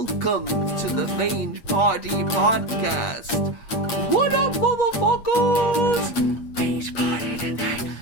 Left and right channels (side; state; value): right; late; 8.5 ms